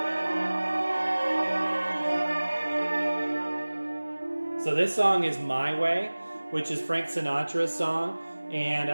So this song is My Way, which is Frank Sinatra's song. And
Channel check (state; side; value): inverted; both; correlation -1.00